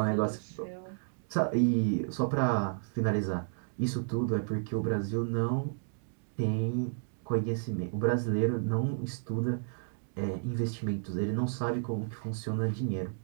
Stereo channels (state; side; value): silent; left; digital silence